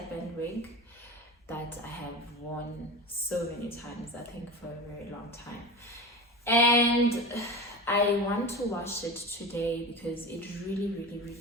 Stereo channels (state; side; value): normal; both; correlation 0.29